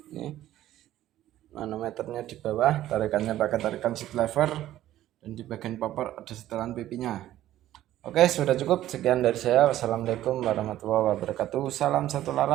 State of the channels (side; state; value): left; quieter; 13.5 dB